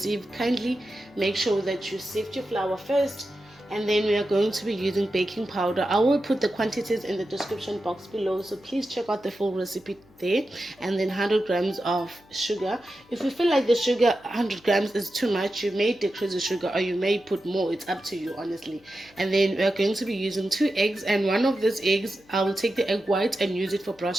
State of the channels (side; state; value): left; noise; hum, 29 dB below the sound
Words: kindly make sure that you sift your flour first. And then we are going to be using baking powder. I will put the quantities in the description box below, so please check out the full recipe there. And then 100 grams of sugar. If you feel like the sugar 100 grams is too much, you may decrease the sugar or you may put more. It's up to you, honestly. And then we are going to be using 2 eggs, and one of these eggs I will take the egg white and use it for